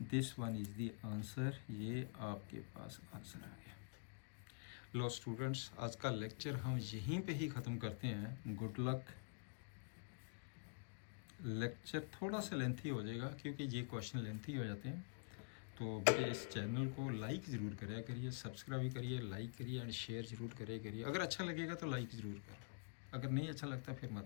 This one is the answer. ये आपके पास आंसर आ गया। लो स्टूडेंट्स, आज का लेक्चर हम यहीं पे ही ख़त्म करते हैं। Good luck. लेक्चर थोड़ा सा लेंथी हो जाएगा क्योंकि ये क्वेश्चन लेंथी हो जाते हैं, तो बेटे इस चैनल को लाइक ज़रूर करिए, सब्सक्राइब करिए, लाइक करिए एंड शेयर ज़रूर करिए। अगर अच्छा लगेगा तो लाइक ज़रूर करो, अगर नहीं अच्छा लगता फिर मत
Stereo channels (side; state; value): right; quieter; 39.7 dB